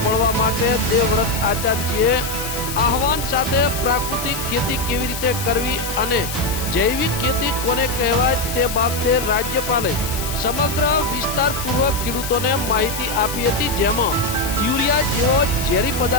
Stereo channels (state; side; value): noise; left; hiss, 7 dB below the sound